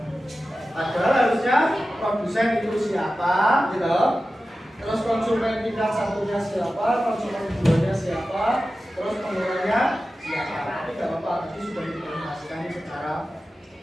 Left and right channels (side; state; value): both; normal; correlation 0.94